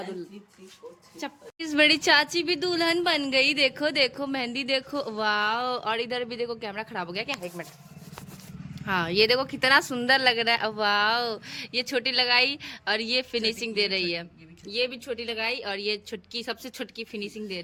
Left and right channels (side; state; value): both; identical; correlation 1.00